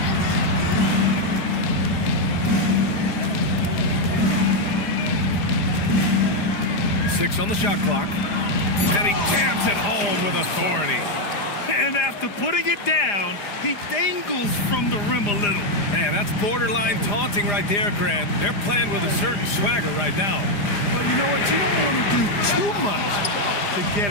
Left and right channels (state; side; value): late; right; 4.9 ms